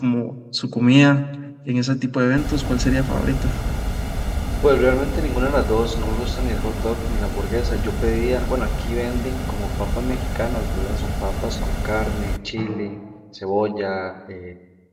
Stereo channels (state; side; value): identical; both; correlation 1.00